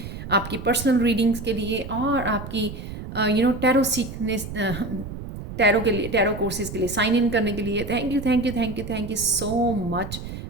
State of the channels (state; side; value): noise; right; rumble, 9 dB below the sound